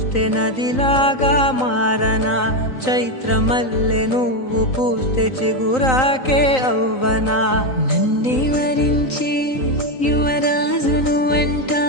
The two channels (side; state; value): right; late; 3.9 ms